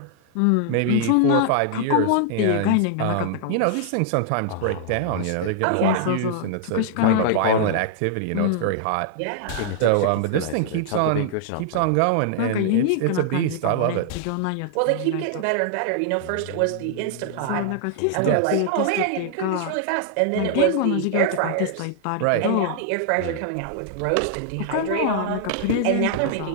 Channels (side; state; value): both; different; correlation -0.01